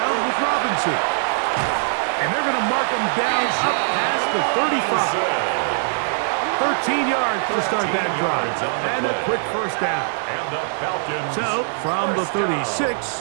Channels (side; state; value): left; silent; digital silence